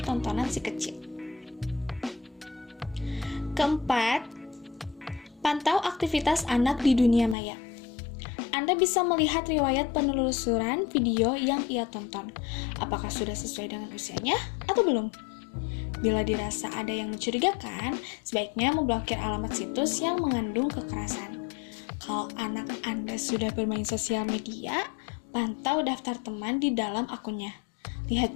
tontonan si kecil. Keempat, pantau aktivitas anak di dunia maya. Anda bisa melihat riwayat penelusuran video yang ia tonton. Apakah sudah sesuai dengan usianya atau belum? Bila dirasa ada yang mencurigakan, sebaiknya memblokir alamat situs yang mengandung kekerasan. Kalau anak Anda sudah bermain sosial media, pantau daftar teman di dalam akunnya. Lihat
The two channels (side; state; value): right; drops out; at 7.4 s